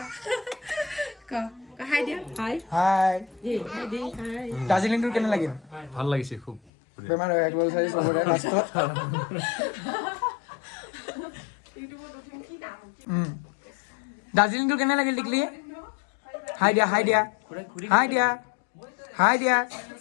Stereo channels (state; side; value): drops out; right; at 6.6 s